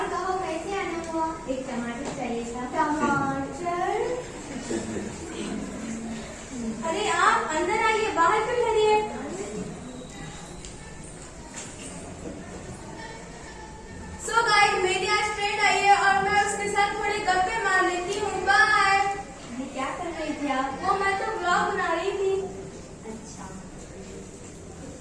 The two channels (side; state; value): both; identical; correlation 1.00